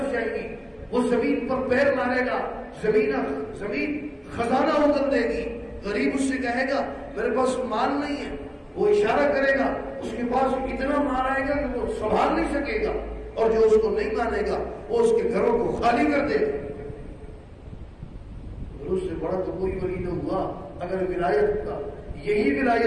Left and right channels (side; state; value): both; identical; correlation 1.00